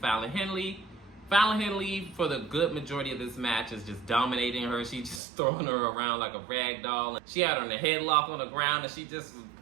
Henley. Fallon Henley, for the good majority of this match, is just dominating her. She's just throwing her around like a rag doll. She had her in a headlock on the ground, and she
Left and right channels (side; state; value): left; drops out; at 5.2 s